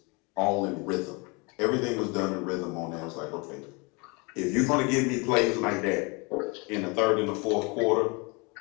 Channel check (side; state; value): right; quieter; 29.5 dB